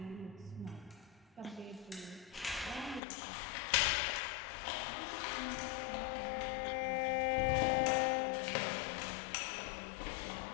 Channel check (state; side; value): drops out; right; at 3.0 s